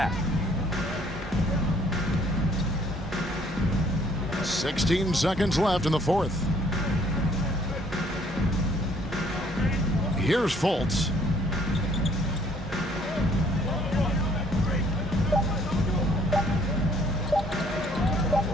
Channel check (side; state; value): both; normal; correlation 0.62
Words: 16 seconds left in the fourth. Here's Fultz.